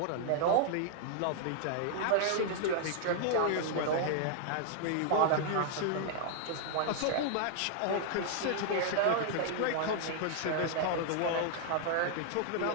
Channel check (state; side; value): different; both; correlation -0.01